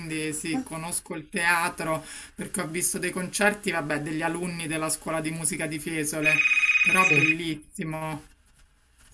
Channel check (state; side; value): identical; both; correlation 1.00